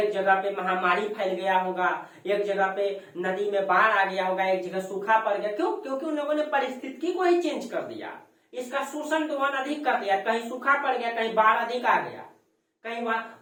पे महामारी फैल गया होगा, एक जगह पे नदी में बाढ़ आ गया होगा, एक जगह सूखा पड़ गया। क्यों? क्योंकि उन लोगों ने परिस्थिति को ही चेंज कर दिया, इसका शोषण दोहन अधिक कर दिया। कहीं सूखा पड़ गया, कहीं बाढ़ अधिक आ गया, कहीं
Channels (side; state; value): both; identical; correlation 1.00